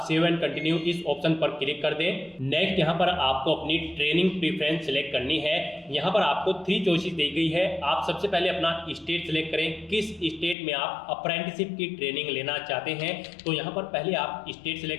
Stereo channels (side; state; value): right; drops out; at 10.6 s